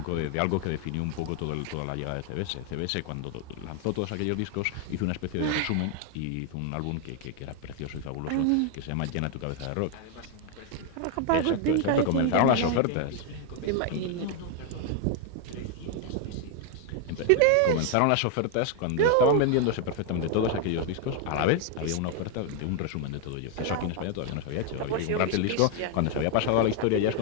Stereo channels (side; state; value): both; different; correlation 0.00